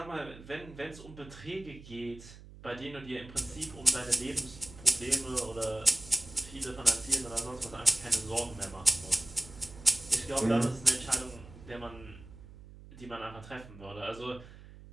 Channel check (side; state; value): right; noise; hum, 18 dB below the sound